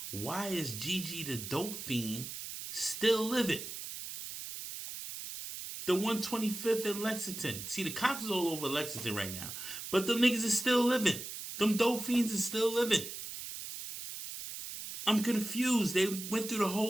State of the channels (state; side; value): noise; right; hiss, 8 dB below the sound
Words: why is Gigi the dope fiend still living? The 125th in Lexington. See, the cops is all over Lexington right now. But them niggas is still living. Them dope fiends is still living. I'm confused. They went through the